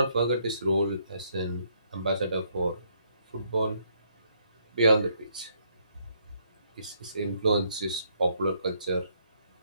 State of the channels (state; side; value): inverted; both; correlation -0.71